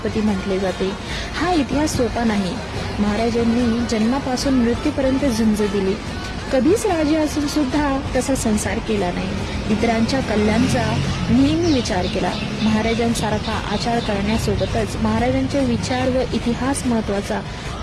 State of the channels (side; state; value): both; identical; correlation 1.00